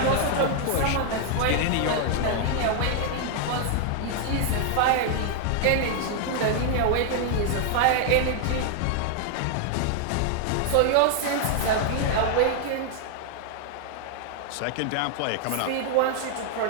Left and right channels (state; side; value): different; both; correlation 0.00